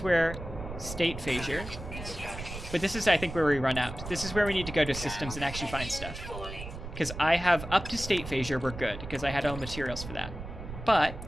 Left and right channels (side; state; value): right; noise; rumble, 10 dB below the sound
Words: where state phasure. But this is, I think, where we run out. This is where we need to go to systems and actually find stuff. Because I have up to state phasure, we're good, because I had all materials for that.